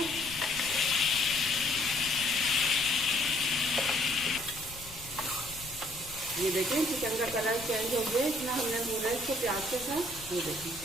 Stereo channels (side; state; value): left; noise; rumble, 17 dB below the sound